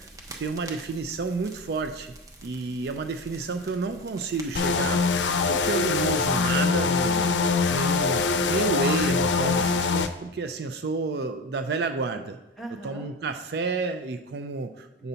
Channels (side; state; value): both; normal; correlation 0.23